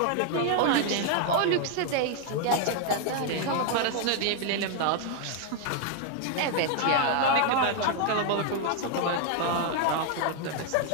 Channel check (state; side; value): different; both; correlation 0.00